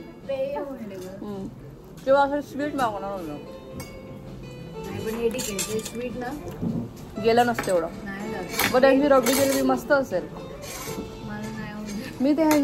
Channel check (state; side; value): identical; both; correlation 1.00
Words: किंवा असं स्वीट मागवणार होतं, स्वीट ना गेलं नसतं एवढं, बट ह्यांची रबडी जिलेबी मस्त असेल। मी ते